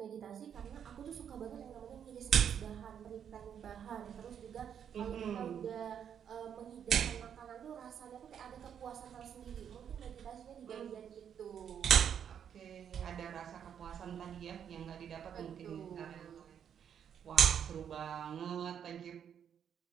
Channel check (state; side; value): quieter; left; 8.4 dB